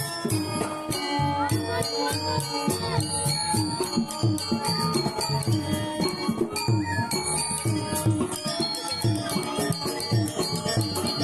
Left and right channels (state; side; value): identical; both; correlation 1.00